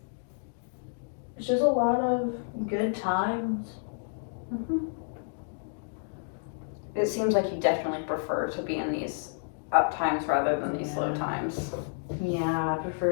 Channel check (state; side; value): silent; right; digital silence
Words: It's just a lot of good times. Mm-hmm. It seems like you definitely prefer to be in these up times rather than these low times. Yeah, I